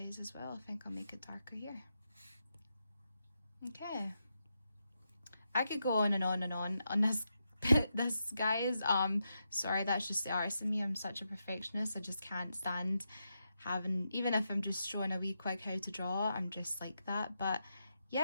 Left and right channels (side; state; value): both; inverted; correlation -0.85